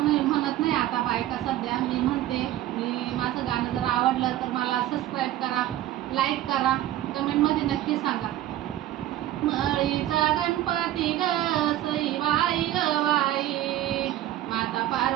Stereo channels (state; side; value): quieter; left; 13.7 dB